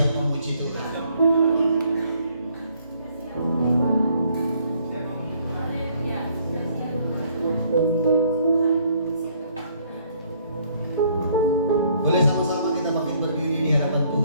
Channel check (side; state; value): both; inverted; correlation -0.65